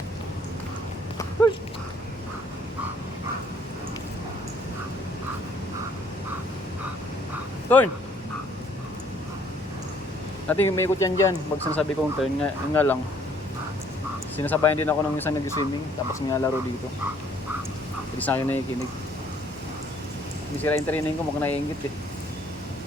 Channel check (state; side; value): normal; both; correlation 0.62